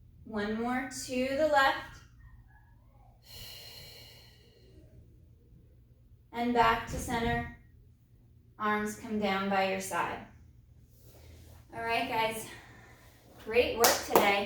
One more to the left. And back to center. Arms come down by your side. All right, guys. Great work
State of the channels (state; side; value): identical; both; correlation 1.00